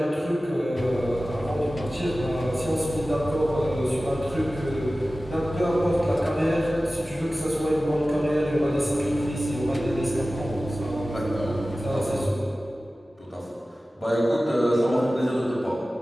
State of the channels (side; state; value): both; normal; correlation 0.96